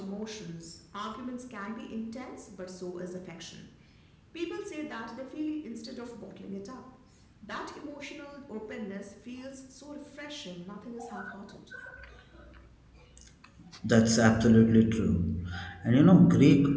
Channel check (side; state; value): both; identical; correlation 1.00